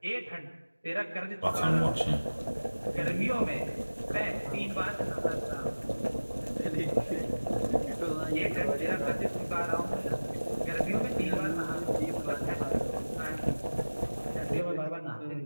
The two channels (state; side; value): inverted; both; correlation -1.00